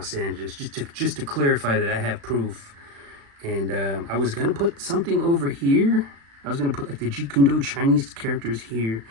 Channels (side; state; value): left; late; 36 ms